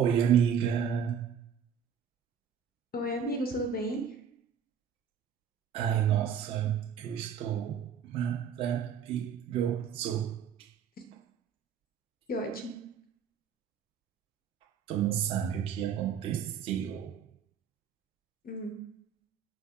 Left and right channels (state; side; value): quieter; left; 7.6 dB